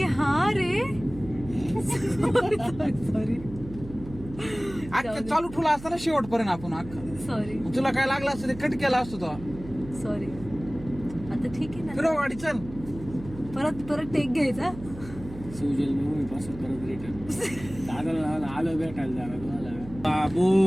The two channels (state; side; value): noise; right; hum, 14 dB below the sound